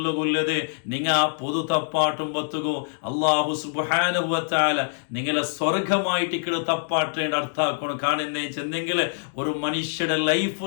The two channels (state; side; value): silent; right; digital silence